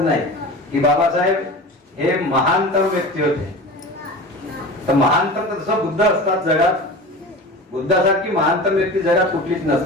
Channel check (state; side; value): normal; both; correlation 0.33